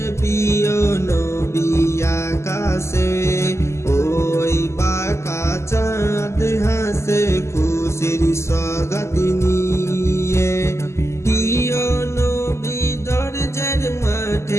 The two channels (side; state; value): right; late; 0.13 ms